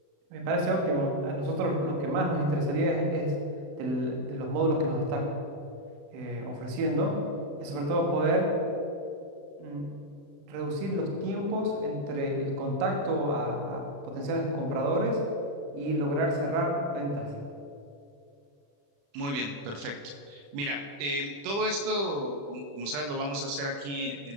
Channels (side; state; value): left; late; 35 ms